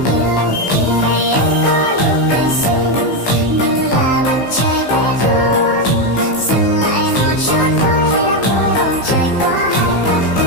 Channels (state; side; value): late; right; 15 ms